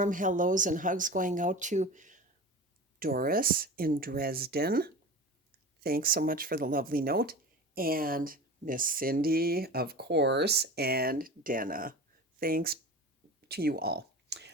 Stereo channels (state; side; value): normal; both; correlation 0.33